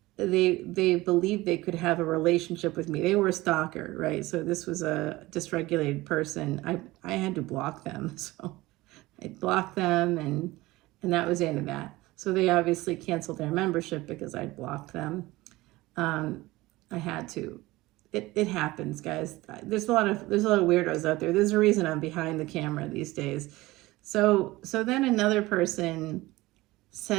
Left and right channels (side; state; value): left; quieter; 19.4 dB